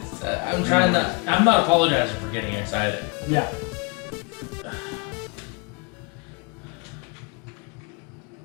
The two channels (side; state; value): right; quieter; 31.2 dB